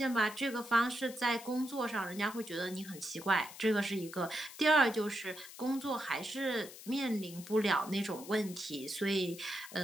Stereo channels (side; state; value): left; noise; hiss, 15 dB below the sound